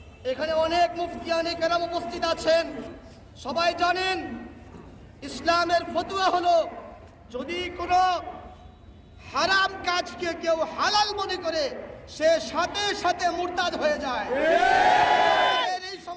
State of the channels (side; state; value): both; identical; correlation 1.00